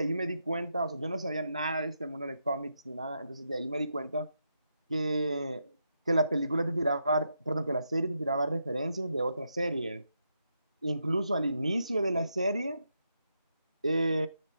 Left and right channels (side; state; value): both; inverted; correlation -0.83